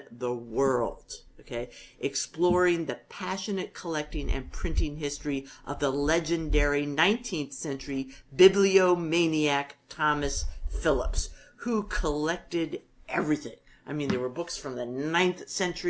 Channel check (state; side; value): identical; both; correlation 1.00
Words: the world, exploring the passionate collecting and printing history of the legendary 19th century bibliomaniac Thomas Phillips, who collected everything. I mean, there were books from the 9th